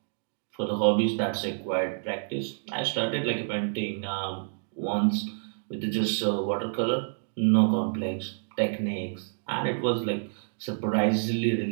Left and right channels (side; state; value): left; silent; digital silence